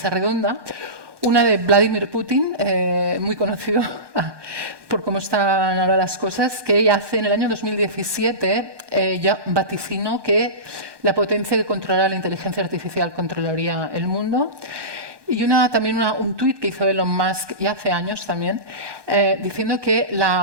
redonda. Una de Vladimir Putin, muy conocido por cómo están ahora las cosas, que ella hace en el año 2017, ya vaticinó que la potencia que controlará la inteligencia artificial controlaría el mundo. Y también un tuit que hizo Elon Musk ya hace años también, diciendo que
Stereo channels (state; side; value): late; left; 1.2 ms